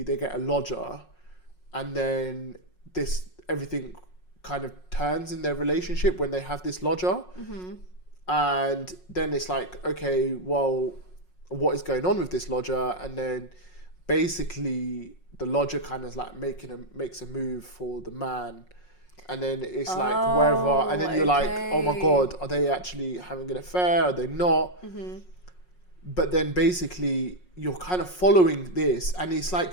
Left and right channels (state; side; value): late; right; 5.5 ms